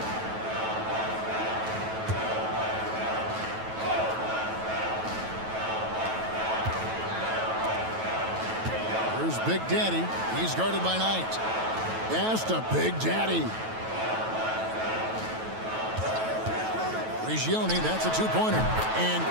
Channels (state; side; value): late; left; 9.2 ms